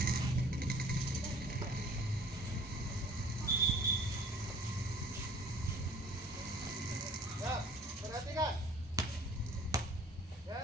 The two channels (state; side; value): normal; both; correlation 0.52